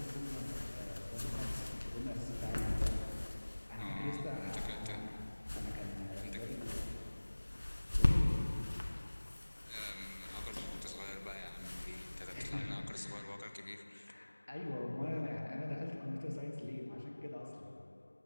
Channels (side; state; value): both; inverted; correlation -1.00